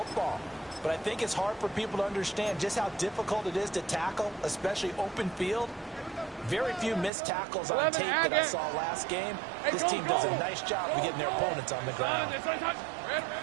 But I think it's hard for people to understand just how difficult it is to tackle, especially open field. Very few missed tackles on tape that I saw last game. This team does a nice job of getting their opponents on the ground.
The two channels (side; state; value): left; drops out; at 7.1 s